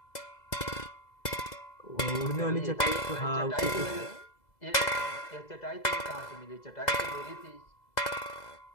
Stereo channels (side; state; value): right; late; 2.0 ms